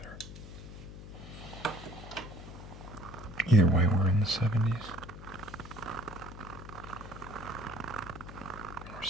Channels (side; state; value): left; noise; hum, 13 dB below the sound